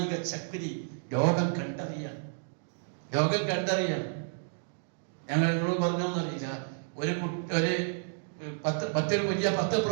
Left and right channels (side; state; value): left; silent; digital silence